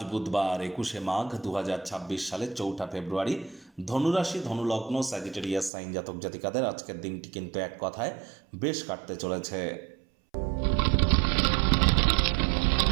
বুধবার 21শে মাঘ 2026 সালের 4ঠা ফেব্রুয়ারি। ধনুরাশি, ধনুলগ্ন, স্যাজিটেরিয়াস সাইন জাতক জাতিকাদের আজকের দিনটি কিন্তু এক কথায় বেশ কাটতে চলেছে।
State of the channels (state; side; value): drops out; left; at 5.7 s